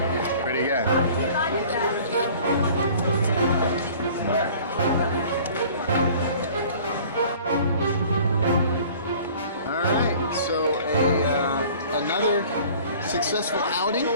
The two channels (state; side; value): inverted; both; correlation -0.49